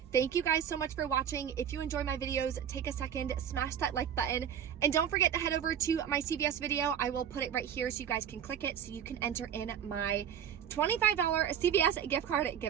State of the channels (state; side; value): quieter; left; 8.9 dB